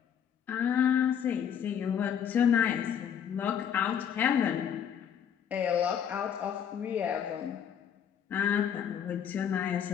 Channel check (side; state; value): right; quieter; 8.5 dB